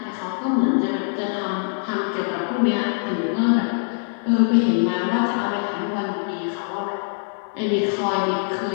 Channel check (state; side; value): silent; right; 63 dB below the other